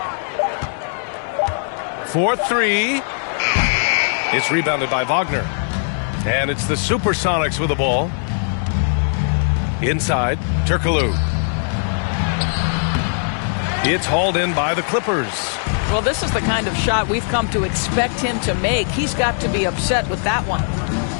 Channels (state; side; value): silent; right; digital silence